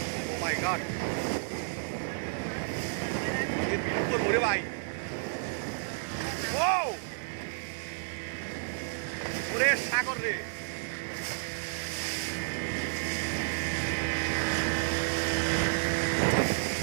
ও মাই গড, এর বিল উপর মরে ভাই, ও ওরে সাগর রে,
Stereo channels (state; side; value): silent; left; digital silence